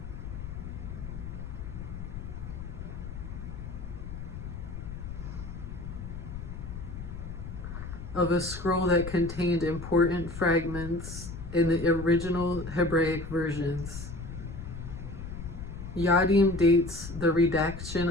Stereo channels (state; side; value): noise; left; rumble, 9 dB below the sound